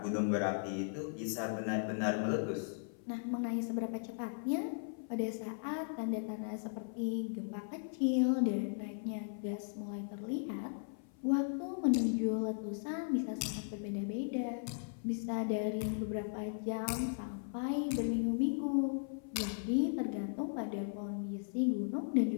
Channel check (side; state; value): right; silent; 53 dB below the other